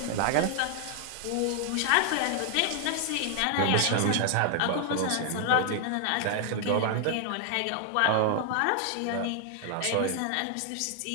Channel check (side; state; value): both; different; correlation 0.00